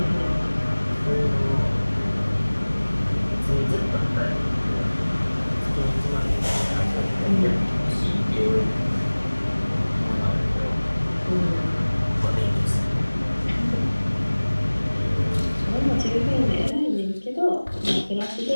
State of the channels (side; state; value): both; inverted; correlation -1.00